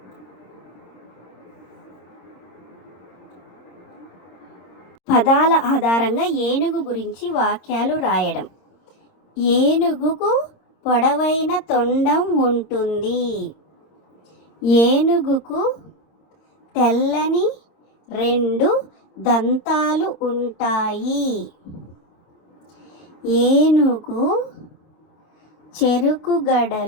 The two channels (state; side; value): late; right; 26 ms